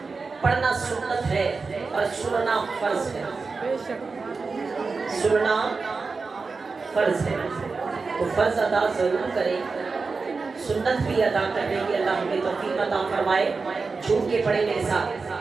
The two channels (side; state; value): left; quieter; 4.4 dB